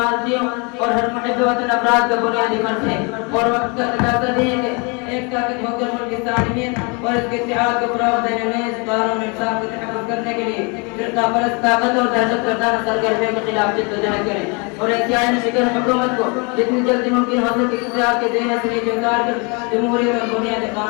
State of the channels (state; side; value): quieter; right; 32.0 dB